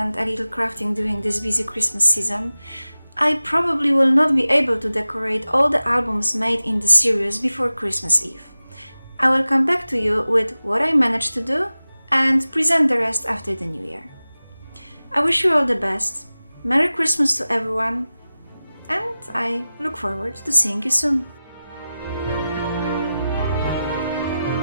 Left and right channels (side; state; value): both; inverted; correlation -0.95